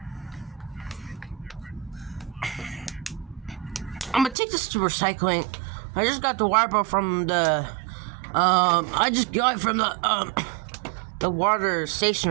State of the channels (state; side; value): drops out; left; at 4.4 s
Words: I'm gonna take this to recycling. I just got the water bottle from the, I just got it from the water